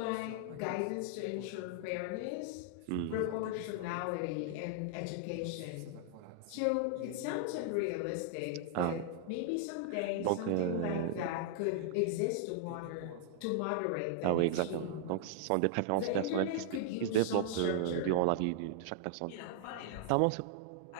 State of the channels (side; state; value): both; different; correlation -0.01